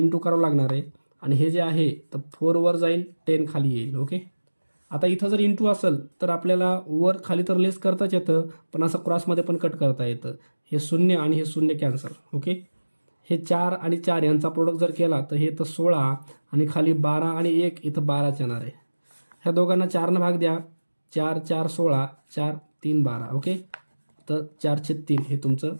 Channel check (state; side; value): inverted; both; correlation -1.00